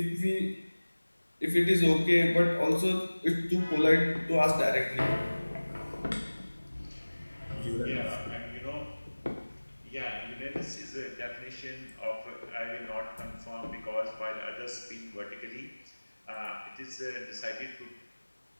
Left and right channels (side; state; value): both; inverted; correlation -1.00